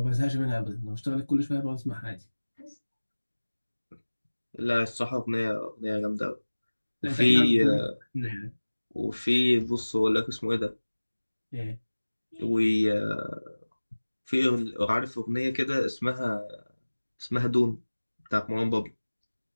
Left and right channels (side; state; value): both; inverted; correlation -1.00